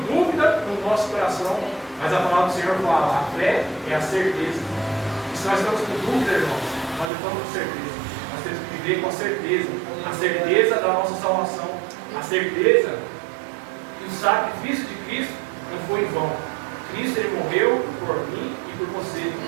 dúvida no nosso coração. Mas a palavra do Senhor fala, a fé é a certeza. E se nós estamos com dúvida, irmãos, nós não estamos com certeza. Nós temos que viver com a certeza. A certeza da nossa salvação. A certeza que o sacrifício de Cristo não foi em vão. Cristo, Ele morreu por mim e por você,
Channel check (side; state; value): left; drops out; at 7.1 s